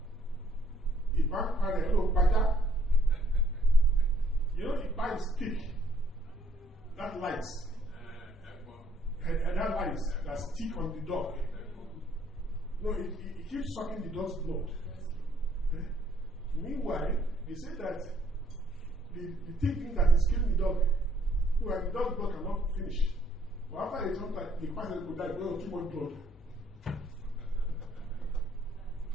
Hello, Paja. You know, Ipa is stick. That lights. And that lights that stick on the dog. No, it keeps sucking the dog's blood. Meanwhile, they say that the thing that is killing the dog, the dog's blood cannot finish. But after they jump, the person could die because of too much blood.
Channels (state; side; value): normal; both; correlation 0.66